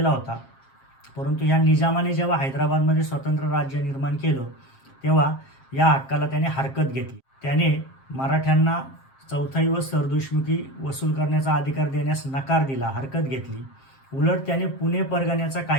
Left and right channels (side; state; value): right; late; 7.5 ms